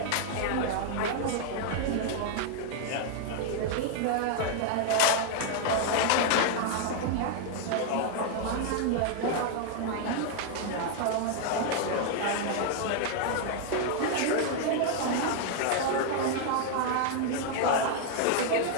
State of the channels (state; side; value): different; both; correlation 0.00